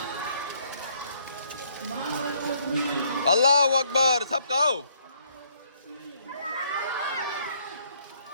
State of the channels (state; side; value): inverted; both; correlation -0.67